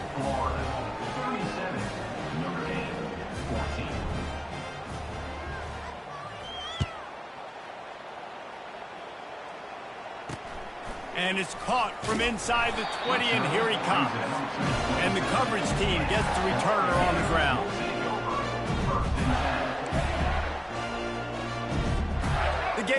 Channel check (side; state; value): both; identical; correlation 1.00